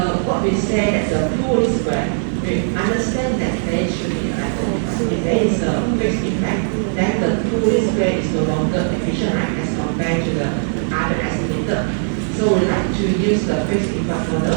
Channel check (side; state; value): left; silent; digital silence